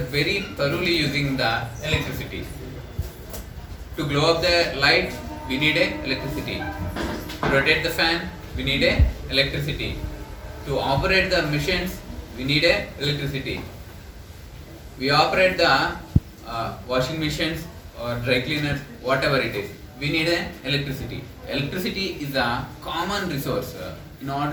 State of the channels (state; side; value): identical; both; correlation 1.00